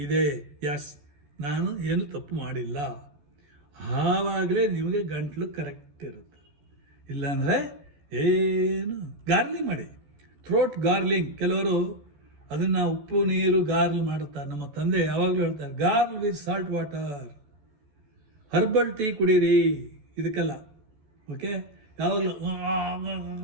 ಇದೆ. ಎಸ್, ನಾನು ಏನು ತಪ್ಪು ಮಾಡಿಲ್ಲ. ಆವಾಗಲೇ ನಿಮಗೆ ಗಂಟಲು ಕರೆಕ್ಟ್ ಇರುತ್ತೆ. ಇಲ್ಲಾಂದರೆ ಏನು ಗಾರ್ಲಿಂಗ್ ಮಾಡಿ, ಥ್ರೋಟ್ ಗಾರ್ಲಿಂಗ್. ಕೆಲವರು ಅದನ್ನು ಉಪ್ಪು ನೀರು ಗಾರ್ಲ್ ಮಾಡುತ್ತಾರೆ. ನಮ್ಮ ತಂದೆ ಯಾವಾಗಲೂ ಹೇಳ್ತಾರೆ gargle with salt water, herbal tea ಕುಡೀರಿ. ಇದಕ್ಕೆಲ್ಲ ಓಕೆ, ಯಾವಾಗಲೂ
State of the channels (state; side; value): late; left; 14 ms